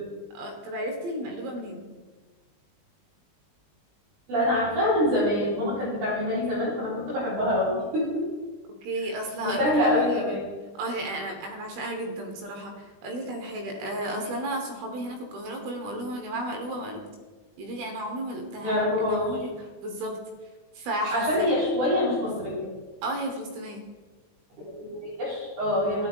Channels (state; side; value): late; left; 20 ms